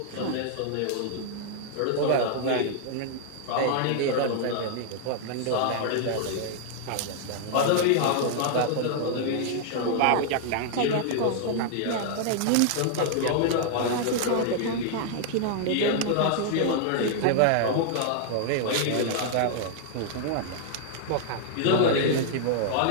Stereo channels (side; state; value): both; different; correlation -0.01